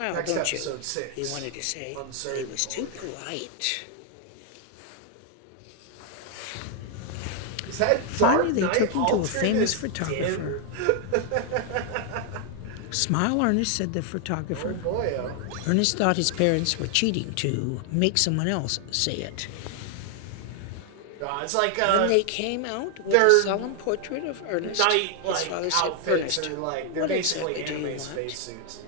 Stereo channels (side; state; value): both; different; correlation 0.00